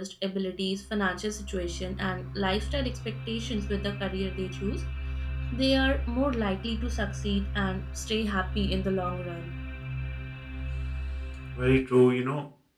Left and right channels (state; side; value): identical; both; correlation 1.00